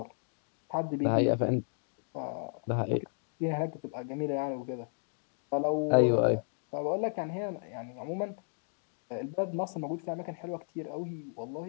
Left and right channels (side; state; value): right; silent; digital silence